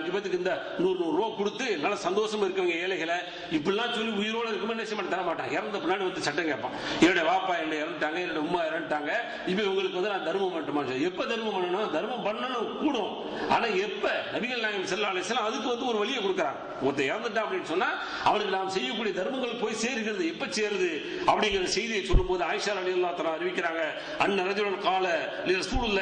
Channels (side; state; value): both; identical; correlation 1.00